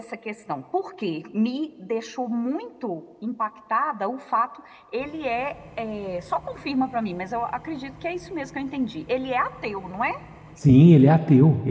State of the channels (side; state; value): both; identical; correlation 1.00